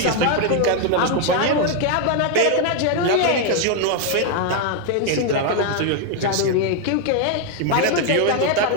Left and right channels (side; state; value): both; different; correlation 0.01